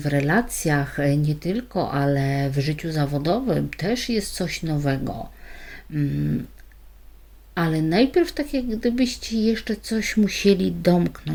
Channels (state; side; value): identical; both; correlation 1.00